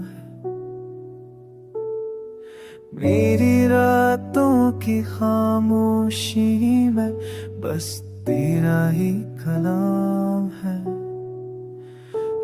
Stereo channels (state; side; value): identical; both; correlation 1.00